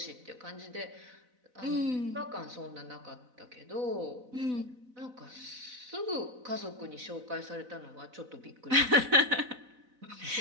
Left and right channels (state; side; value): late; left; 4.0 ms